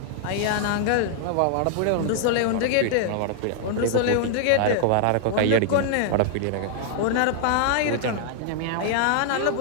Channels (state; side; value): different; both; correlation 0.00